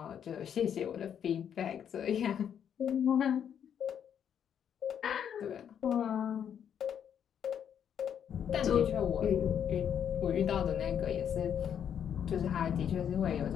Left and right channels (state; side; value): quieter; right; 8.6 dB